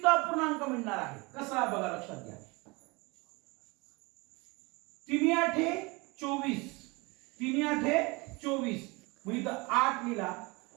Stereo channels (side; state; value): left; quieter; 26.2 dB